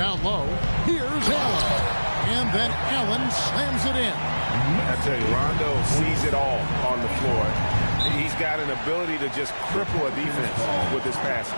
low. Here's Allen. And then Allen slams it in. I tell you, Rondo sees it all on the floor. He's got an ability to just cripple a defense with his passing.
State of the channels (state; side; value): inverted; both; correlation -1.00